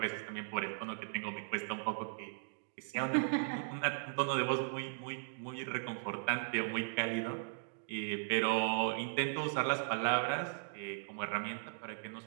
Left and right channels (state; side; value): silent; left; digital silence